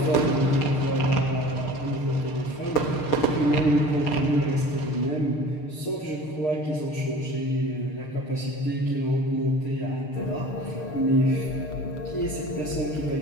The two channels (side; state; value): right; late; 6.6 ms